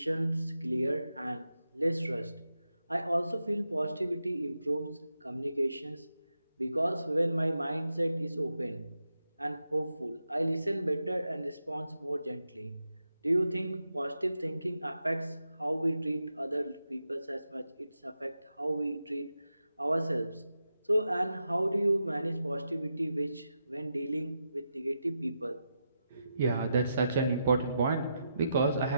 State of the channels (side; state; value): both; inverted; correlation -0.86